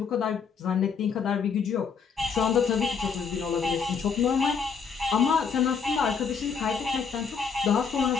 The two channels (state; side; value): quieter; right; 6.0 dB